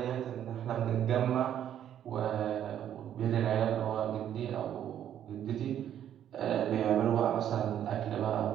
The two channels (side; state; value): left; quieter; 10.3 dB